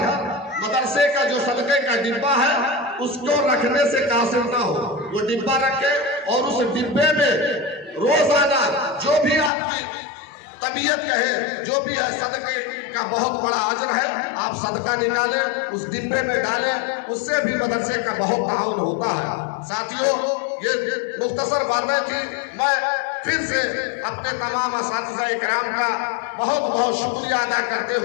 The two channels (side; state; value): right; drops out; at 9.5 s